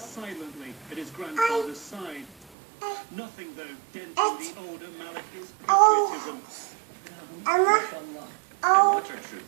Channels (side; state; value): left; drops out; at 2.5 s